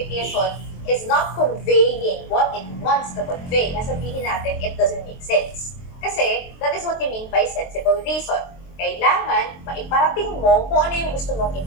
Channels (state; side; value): late; right; 23 ms